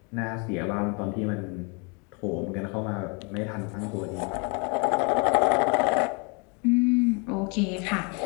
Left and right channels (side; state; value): right; quieter; 33.9 dB